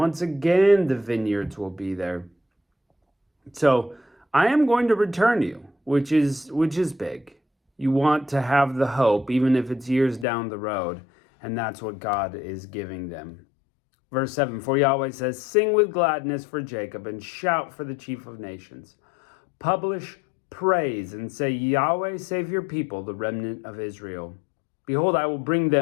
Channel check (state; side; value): drops out; right; at 10.2 s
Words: again, the vineyards will be there. So I am going to return you, which is big. You want to have the hope, even if it's years down the road, and that's what God is giving them. Verse 7, for Yahweh says, sing with gladness for Jacob and shout for the chief of nations. Publish praise and say, Yahweh, save your people, the remnant of Israel. Behold, I will bring